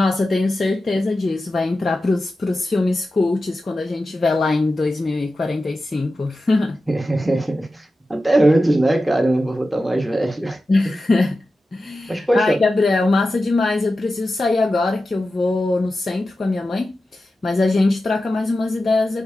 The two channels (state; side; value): normal; both; correlation 0.93